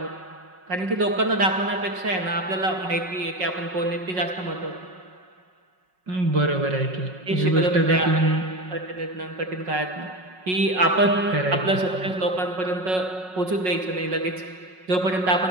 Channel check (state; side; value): late; left; 5.4 ms